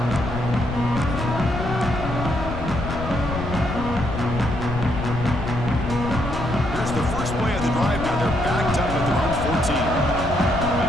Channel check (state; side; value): noise; left; rumble, 5 dB below the sound